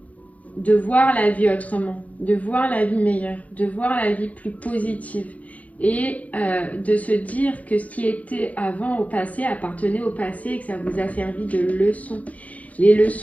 de voir la vie autrement, de voir la vie meilleure, de voir la vie plus positive. Et de se dire que ce qui était avant au passé appartenait au passé et que ça vous a servi de leçon. Les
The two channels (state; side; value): late; right; 0.070 ms